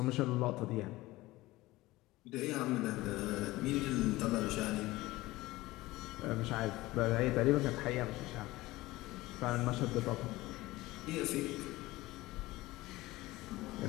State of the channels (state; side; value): quieter; right; 18.9 dB